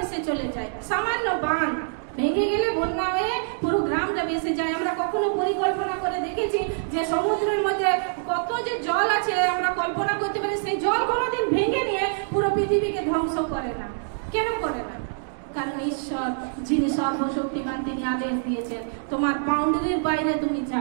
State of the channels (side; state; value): left; silent; digital silence